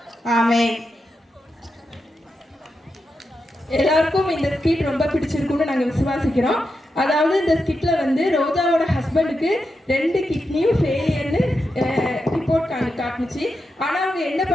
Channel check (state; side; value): normal; both; correlation 0.87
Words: ஆமென். எல்லாருக்கும் இந்த ஸ்கிட் ரொம்ப பிடிச்சிருக்கும்னு நாங்க விசுவாசிக்கிறோம். அதாவது இந்த ஸ்கிட்ல வந்து ரோஜாவோட ஹஸ்பண்டுக்கு 2 கிட்னியும் ஃபெயிலியர்னு ரிப்போர்ட் காட்டுச்சு. ஆனா அவங்க என்ன